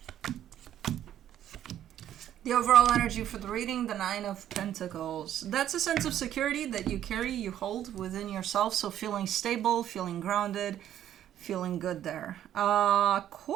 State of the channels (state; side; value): quieter; left; 11.2 dB